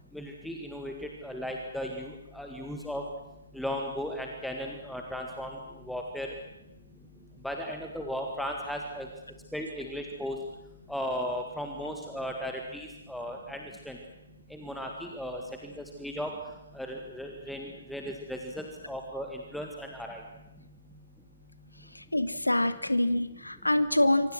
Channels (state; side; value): inverted; both; correlation -0.43